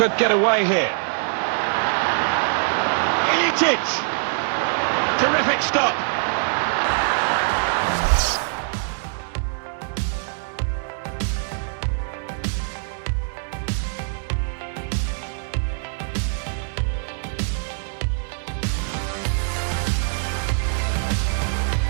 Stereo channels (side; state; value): left; silent; digital silence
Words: get away here. Iličić! Terrific stop.